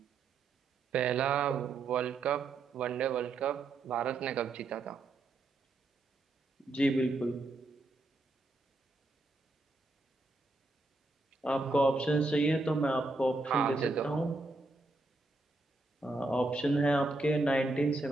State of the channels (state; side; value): quieter; left; 3.1 dB